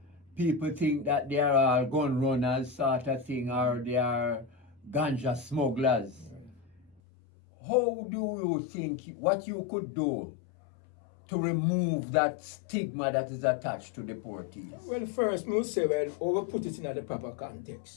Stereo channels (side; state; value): right; drops out; at 7.0 s